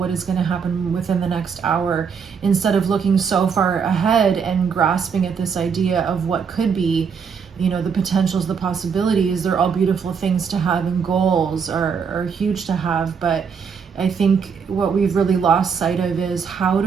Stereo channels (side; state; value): left; quieter; 6.3 dB